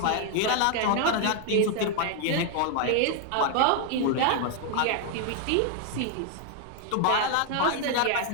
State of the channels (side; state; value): both; different; correlation 0.00